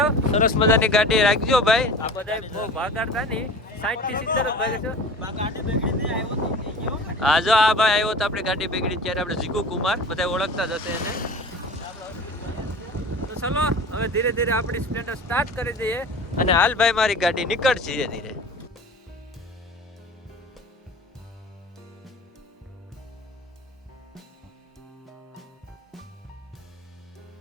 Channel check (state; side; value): normal; both; correlation 0.38